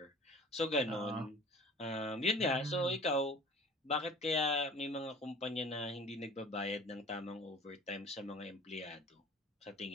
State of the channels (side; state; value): both; normal; correlation 0.46